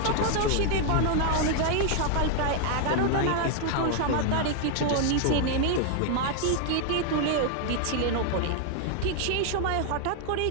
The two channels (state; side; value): different; both; correlation 0.00